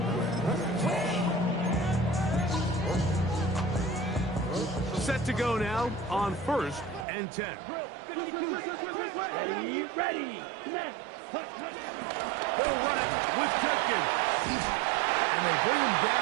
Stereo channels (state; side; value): drops out; left; at 7.1 s